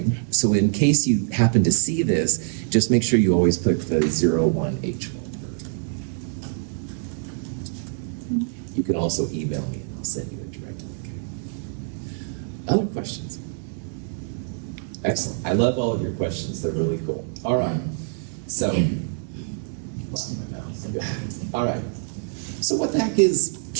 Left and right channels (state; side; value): silent; left; digital silence